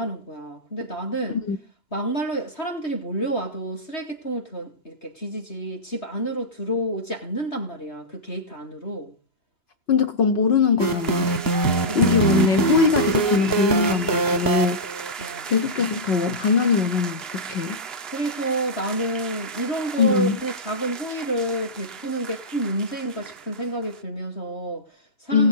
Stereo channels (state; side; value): late; right; 2.9 ms